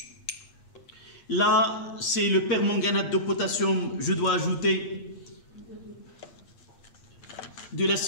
Là, c'est le permanganate de potassium. Je dois ajouter de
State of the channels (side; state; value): right; late; 8.5 ms